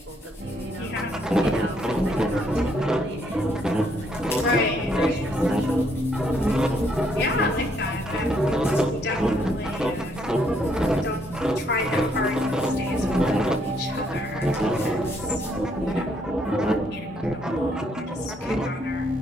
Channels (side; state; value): both; normal; correlation 0.71